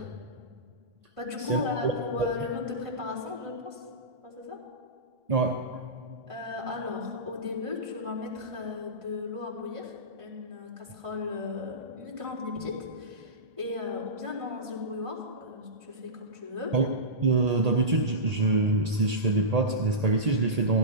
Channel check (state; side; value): late; left; 1.8 ms